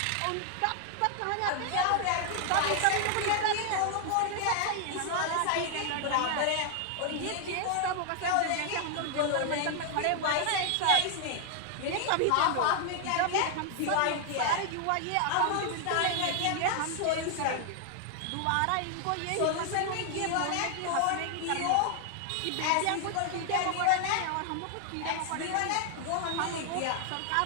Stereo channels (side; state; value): both; different; correlation 0.00